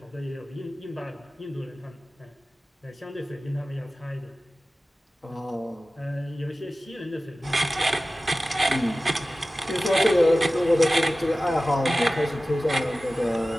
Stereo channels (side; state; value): both; normal; correlation 0.96